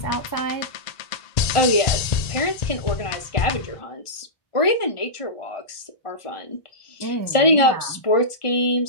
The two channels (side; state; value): right; late; 1.4 ms